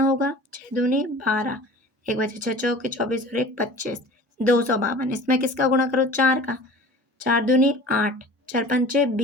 होगा, 6 दूनी 12, 1 बचे 6 चौके 24 और 1 25, 252। इसमें किसका गुणा करो, 4 का, 4 दूनी 8, 4 पंचे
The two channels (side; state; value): both; normal; correlation 0.42